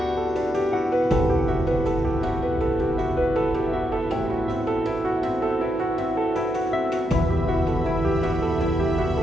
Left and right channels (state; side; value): normal; both; correlation 0.83